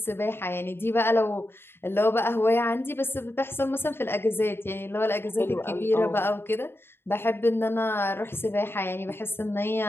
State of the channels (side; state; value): right; late; 0.11 ms